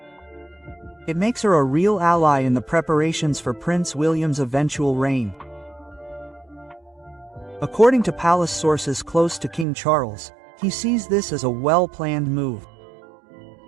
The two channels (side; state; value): left; drops out; at 9.7 s